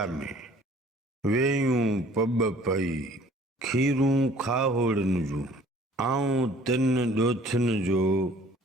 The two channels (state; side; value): normal; both; correlation 0.54